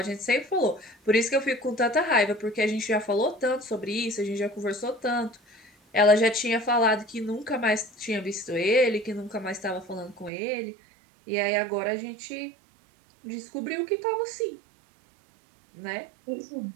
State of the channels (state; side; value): drops out; left; at 10.3 s